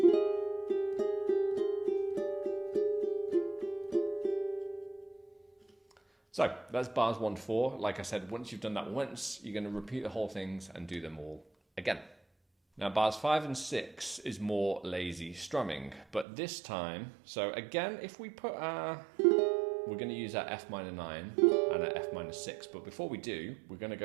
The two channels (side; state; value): left; drops out; at 16.2 s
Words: So that's bars 1 to 4. Like I said, once you've done that once, you're going to repeat the whole things and do them all again. Now bars 5 and 6 is more lazy strumming, but this time, so again, if we put our, we're going to use our F minor 9 and our F minor 6, but before we do, we're going to